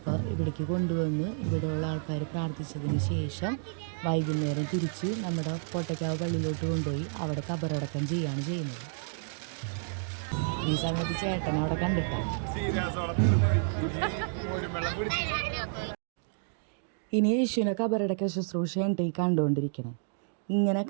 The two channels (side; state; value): left; silent; digital silence